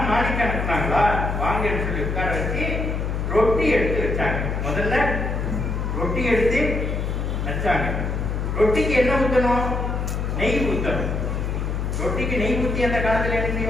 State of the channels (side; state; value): left; noise; hum, 1 dB below the sound